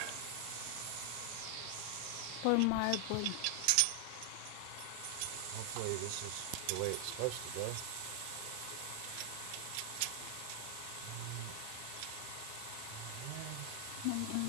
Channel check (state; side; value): different; both; correlation 0.00